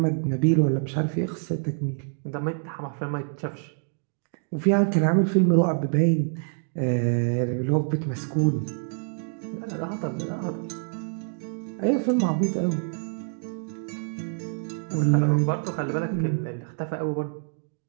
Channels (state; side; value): silent; left; 61 dB below the other